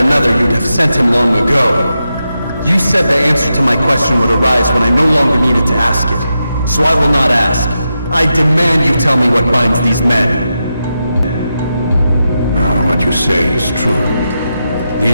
you'd have sent him long ago. You said the answer to my question would arise when I no longer needed to ask it. So I will not ask. I demand you tell me what binds these men. What you say is true.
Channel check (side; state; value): both; inverted; correlation -0.88